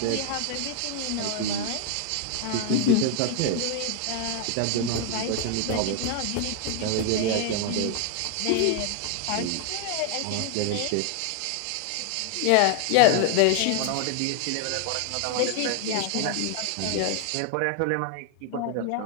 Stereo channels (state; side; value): different; both; correlation 0.00